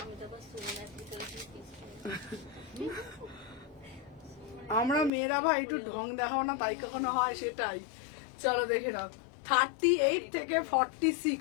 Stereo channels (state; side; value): drops out; right; at 5.1 s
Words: আমি তো আবার সুমনার ভিতরে আমরা মেয়েরা ভাই একটু ঢং দেখাও না, তাই কখনো হয়, সেটাই। চলো দেখে নাও 38 থেকে